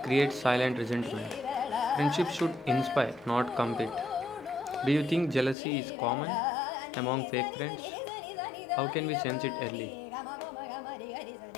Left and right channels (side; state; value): right; drops out; at 5.6 s